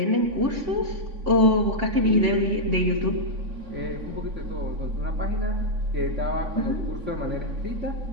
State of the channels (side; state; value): left; late; 3.5 ms